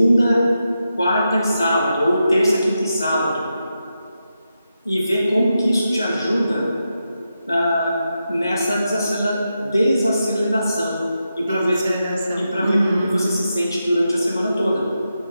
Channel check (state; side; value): inverted; both; correlation -0.87